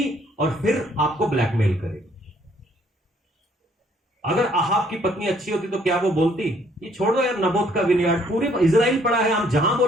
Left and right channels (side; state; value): both; normal; correlation 0.64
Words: और फिर आपको ब्लैकमेल करेगी। अगर अहाब की पत्नी अच्छी होती तो क्या वो बोलती, ये छोड़ दो यार, नबोत का विनियार्ड पूरे इजराइल पड़ा है, हम जहां